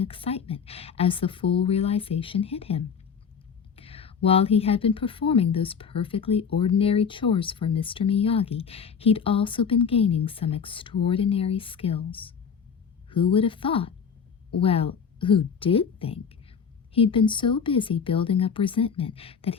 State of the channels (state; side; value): quieter; right; 6.6 dB